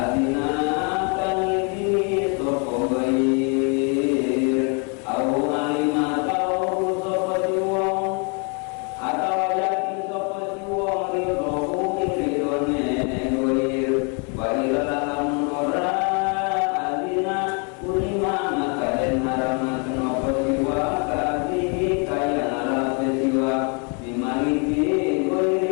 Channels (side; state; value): right; quieter; 36.7 dB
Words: kaniki soko bair au alima tau soko wong atau yakin soko wong ridho ridhone bair bair dalam ora adina ulima maka den harama senopo jiwa kasih kaya nara jiwa maliki